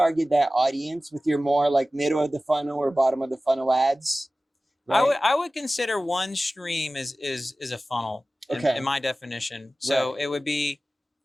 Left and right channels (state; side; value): normal; both; correlation 0.96